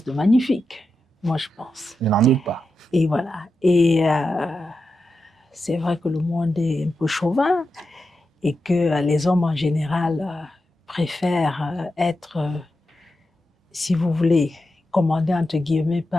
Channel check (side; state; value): both; normal; correlation 0.89